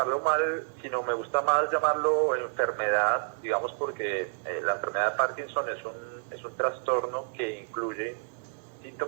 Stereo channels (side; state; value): left; silent; digital silence